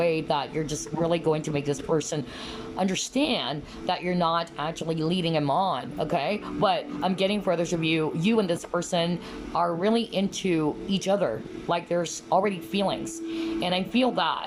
that you're just really going to make this person understand that you're not actually leading him on, okay? But I'm getting for others of you, you and this person are really into each other. Like, there's already feelings. And I feel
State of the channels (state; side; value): identical; both; correlation 1.00